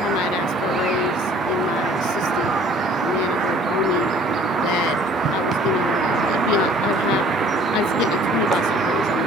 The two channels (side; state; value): both; normal; correlation 0.54